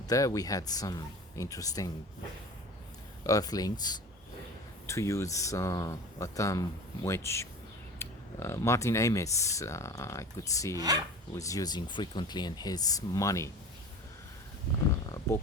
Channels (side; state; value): both; normal; correlation 0.37